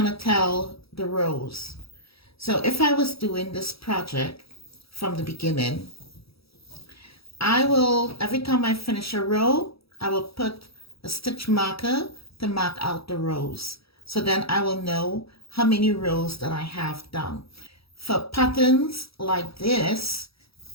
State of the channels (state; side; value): late; right; 0.76 ms